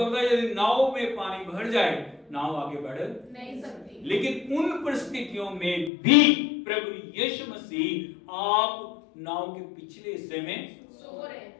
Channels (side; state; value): right; drops out; at 5.9 s